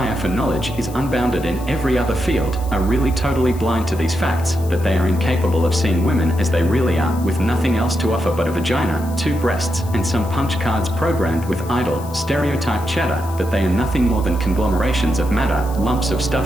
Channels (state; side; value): noise; left; hiss, 19 dB below the sound